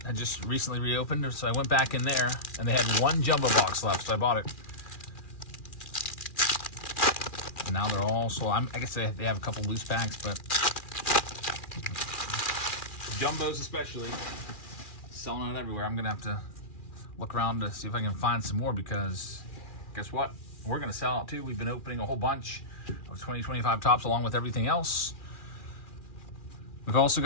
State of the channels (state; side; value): late; right; 2.4 ms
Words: had just recently reopened. So I went back in there, and they had one jumbo box left, so I bought it. And now they're all sold. I guess they have a couple loose packs, but jumbos especially, selling out everywhere. I'm going to have to look around to see if I can find some more, because guess what? We're going to sell out too. We've been opening a whole bunch of 2025 tops along with everything else. We've also